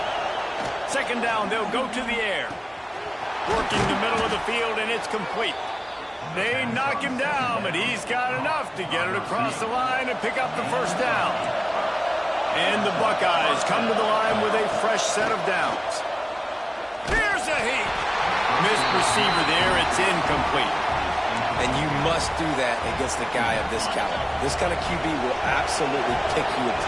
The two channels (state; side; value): identical; both; correlation 1.00